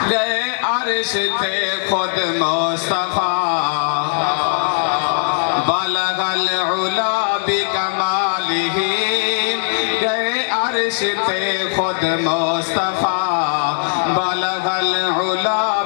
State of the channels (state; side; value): silent; right; 67 dB below the other